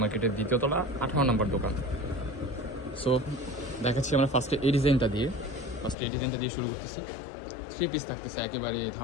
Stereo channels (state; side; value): drops out; right; at 6.0 s